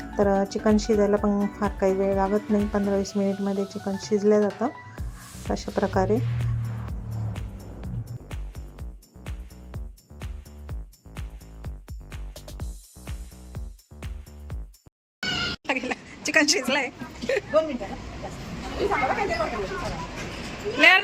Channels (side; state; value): both; identical; correlation 1.00